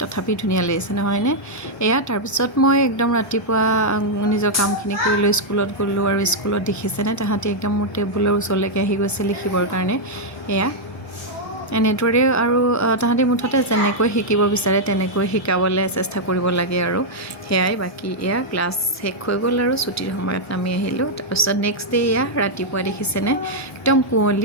তথাপি ধুনিয়া লাগিছে নহয় নে এয়া তাৰ পিছত মই একদম ৰাতিপুৱা নিজৰ কামখিনি কৰি লৈ স্কুলত গলো আৰু স্কুলত দেখিছেনে তাহাঁতি একদম মোৰ টেবুলৰ ওচৰলৈকে আহি গৈছে লিখিবৰ কাৰণে এয়া এনেদৰে আৰু তাহাঁতি মুঠতে যেনেকৈ শিকিব বিচাৰে তেনেকৈ শিকাবলৈ চেষ্টা কৰিব লাগে আৰু হেয়াই বাকি এয়া ক্লাছ শেষ হৈ গ'ল আৰু ছুটিৰ সময়ত নামি আহিলোঁ তাৰপিছত নেক্সট ডে এয়া ৰাতিপুৱা দেখিছেনে একদম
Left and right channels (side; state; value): both; normal; correlation -0.04